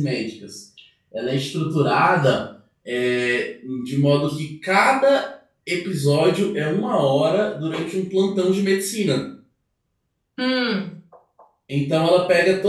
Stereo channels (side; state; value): both; identical; correlation 1.00